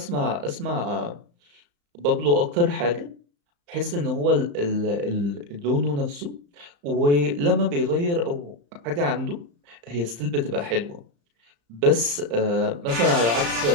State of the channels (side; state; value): left; late; 35 ms